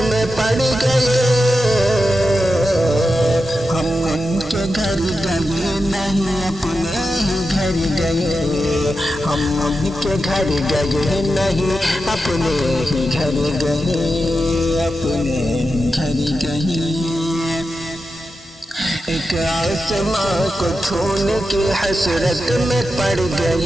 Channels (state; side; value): normal; both; correlation 0.90